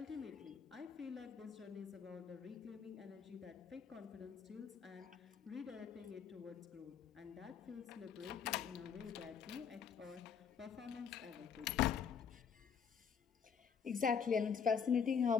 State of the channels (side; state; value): right; quieter; 6.9 dB